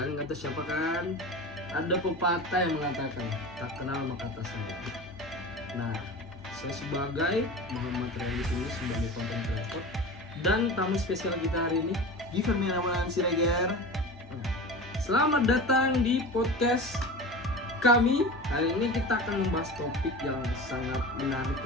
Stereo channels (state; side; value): normal; both; correlation 0.32